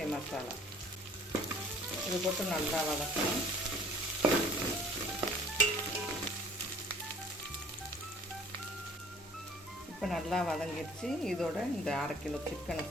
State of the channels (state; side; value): normal; both; correlation 0.52